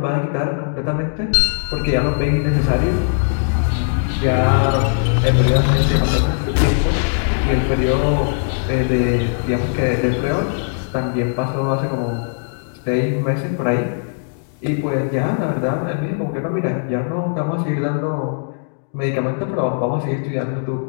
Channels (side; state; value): right; silent; digital silence